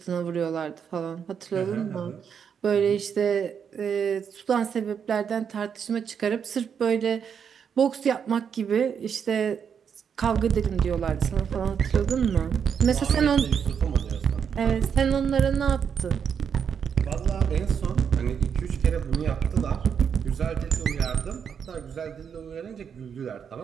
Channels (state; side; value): quieter; left; 7.3 dB